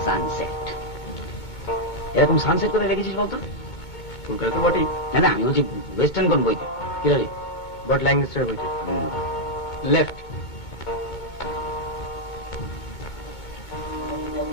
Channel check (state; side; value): late; right; 2.2 ms